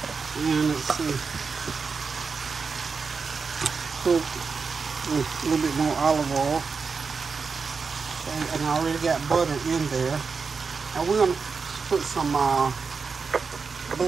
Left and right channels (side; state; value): left; quieter; 5.0 dB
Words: And let's see. Put a little bit more olive oil, and I already got butter in there. And we're gonna put some